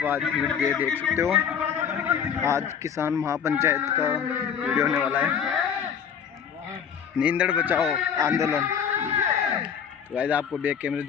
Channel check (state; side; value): quieter; right; 7.6 dB